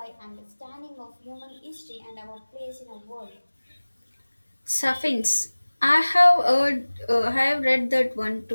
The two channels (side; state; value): both; inverted; correlation -1.00